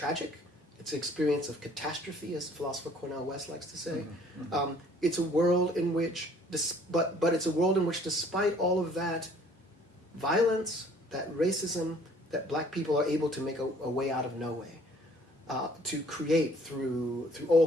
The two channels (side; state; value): both; normal; correlation 0.57